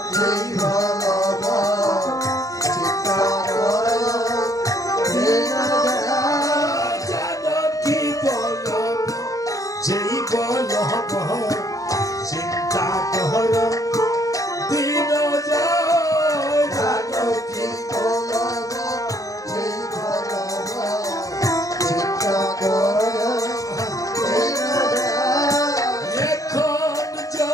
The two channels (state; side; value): late; right; 0.16 ms